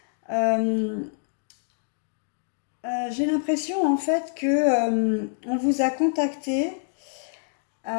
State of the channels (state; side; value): silent; right; 61 dB below the other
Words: Euh, j'ai l'impression en fait que on vous a contacté,